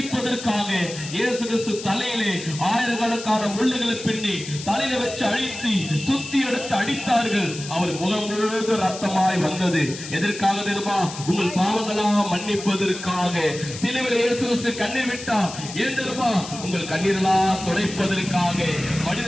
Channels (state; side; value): noise; left; hiss, 11 dB below the sound